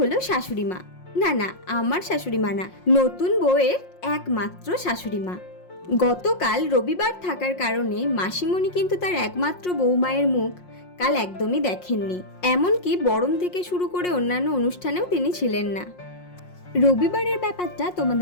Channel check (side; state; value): right; late; 5.6 ms